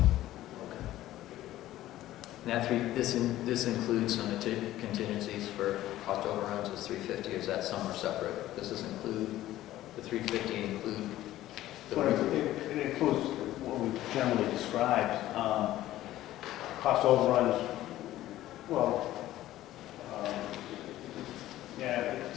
this includes some contingencies for cost overruns is 350, or is that some are separate? Does this include, the 350 include the Well, it includes what we generally described, cost overruns, well, yeah,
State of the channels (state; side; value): quieter; right; 14.5 dB